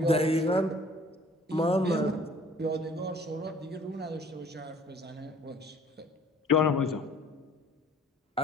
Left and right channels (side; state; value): both; normal; correlation 0.53